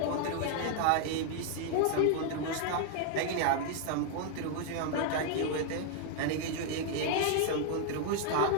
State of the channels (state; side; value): different; both; correlation 0.00